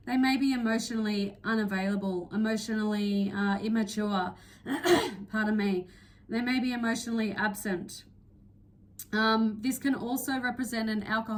They may be emotionally unavailable, emotionally immature, pardon me. They may be emotionally absent. This can also represent an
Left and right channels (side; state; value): both; identical; correlation 1.00